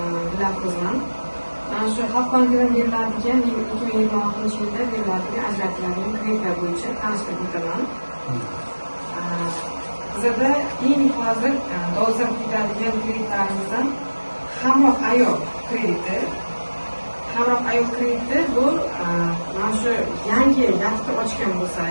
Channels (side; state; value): both; inverted; correlation -1.00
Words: Dilafruzman. Mana shu Xalq bankidan beriladigan 2026-yilda beriladigan ajratiladigan kreditlar bo'yicha tanishtirib o'taman. Bizda eng hozir dolzarb ketadigan kreditlarimizdan hamroh ayol krediti. Hamroh ayol krediti bu mana shu yangi yakta ochgan bo'lsa,